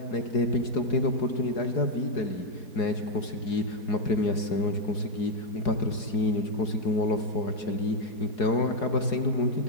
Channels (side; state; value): right; late; 4.8 ms